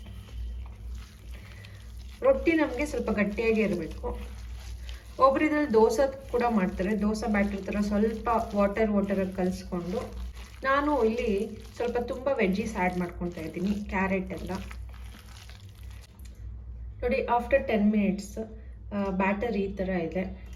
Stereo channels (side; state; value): both; identical; correlation 1.00